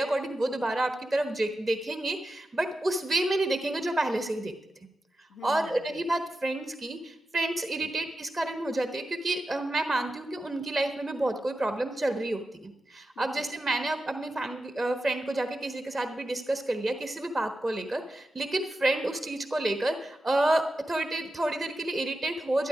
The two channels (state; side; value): normal; both; correlation 0.91